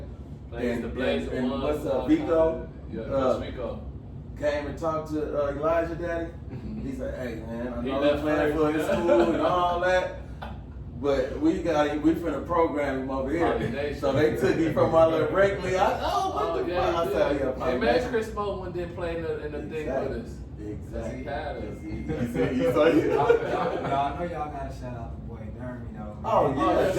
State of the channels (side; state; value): both; identical; correlation 1.00